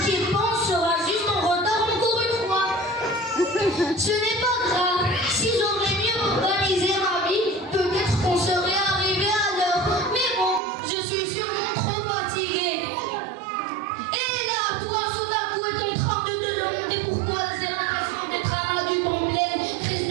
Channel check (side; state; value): left; drops out; at 10.6 s